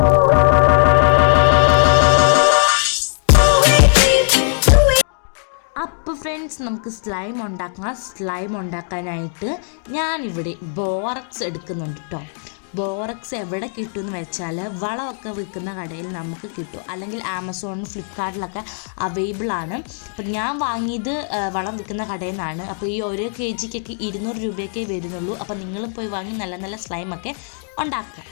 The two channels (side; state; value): right; silent; digital silence